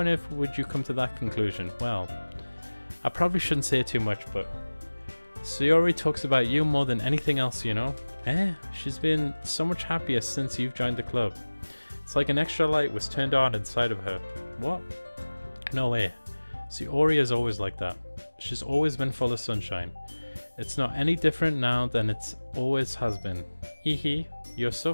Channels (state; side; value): inverted; both; correlation -1.00